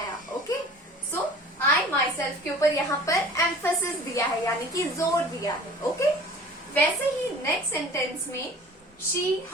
ओके। सो I myself के ऊपर यहाँ पर एम्फेसिस दिया है, यानी कि जोर दिया है, ओके। वैसे ही नेक्स्ट सेंटेंस में she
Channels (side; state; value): both; normal; correlation 0.45